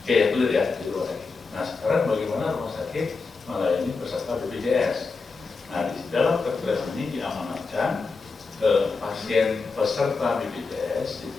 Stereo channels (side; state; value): right; quieter; 4.3 dB